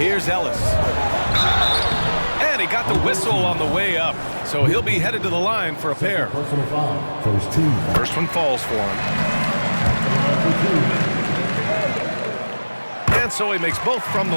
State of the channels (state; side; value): inverted; both; correlation -1.00